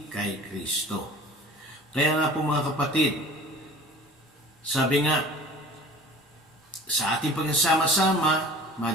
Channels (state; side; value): normal; both; correlation 0.43